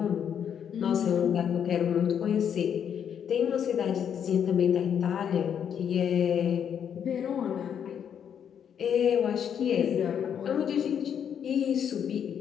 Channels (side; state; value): right; quieter; 8.4 dB